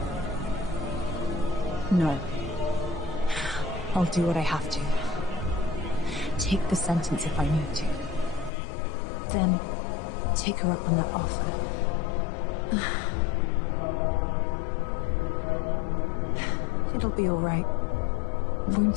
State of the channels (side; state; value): right; drops out; at 8.5 s